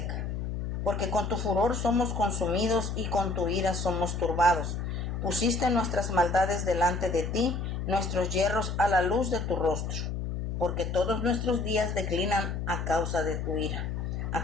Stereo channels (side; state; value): left; noise; hum, 3 dB below the sound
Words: Porque con tu furor somos consumidos y con tu ira somos turbados. Pusiste nuestras maldades delante de ti, nuestros yerros a la luz de tu rostro. Porque todos nuestros días declinan a causa de tu ira.